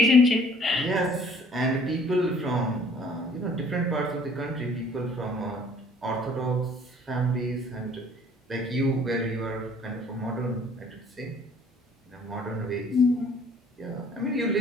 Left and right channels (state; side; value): normal; both; correlation 0.56